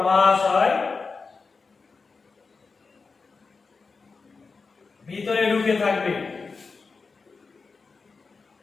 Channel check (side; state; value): right; quieter; 4.5 dB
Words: ভিতরে ঢুকে থাকবে,